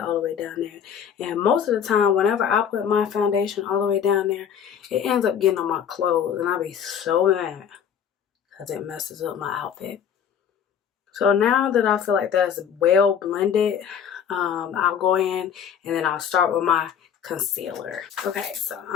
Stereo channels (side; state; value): right; quieter; 8.2 dB